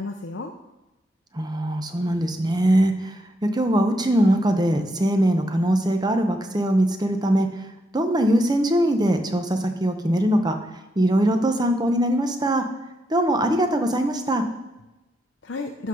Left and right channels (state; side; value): normal; both; correlation 0.80